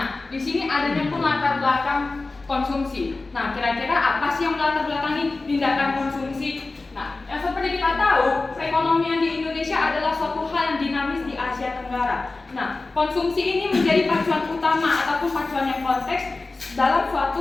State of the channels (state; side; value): quieter; right; 3.5 dB